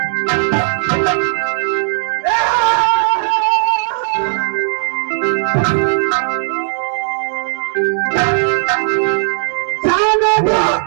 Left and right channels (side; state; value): left; silent; digital silence